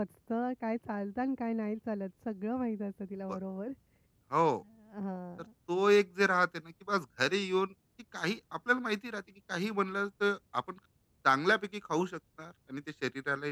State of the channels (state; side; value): identical; both; correlation 1.00